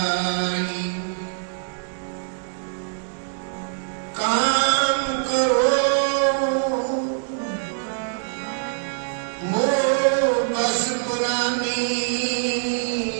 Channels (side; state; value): left; silent; digital silence